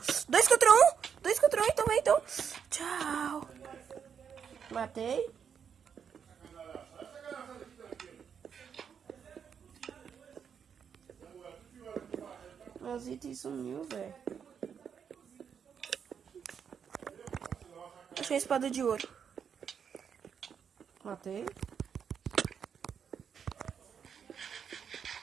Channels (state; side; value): quieter; left; 7.3 dB